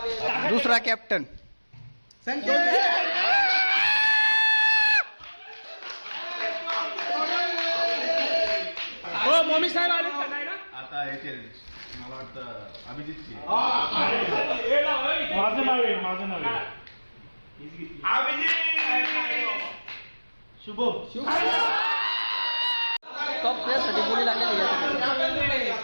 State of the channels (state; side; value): inverted; both; correlation -1.00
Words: दुसरा कॅप्टन हो मम्मी साहेब आले आता येतील. मला वाटतं अभिजितची. माझं नाव आहे शुभम. टॉप प्लेअरसाठी बोली लागलेली आहे.